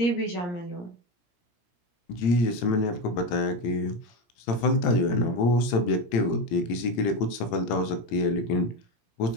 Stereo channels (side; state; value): right; late; 18 ms